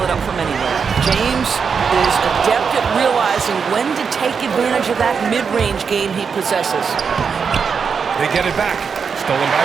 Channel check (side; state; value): left; quieter; 6.0 dB